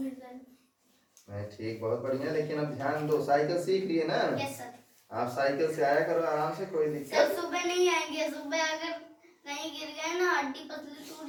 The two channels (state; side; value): identical; both; correlation 1.00